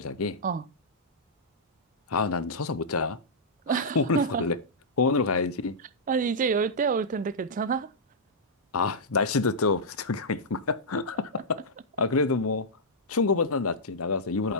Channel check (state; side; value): normal; both; correlation -0.11